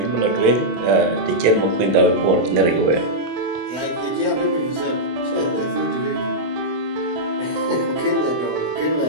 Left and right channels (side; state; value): left; late; 25 ms